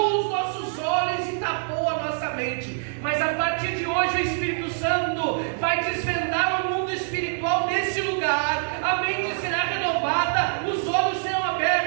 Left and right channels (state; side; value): silent; left; 62 dB below the other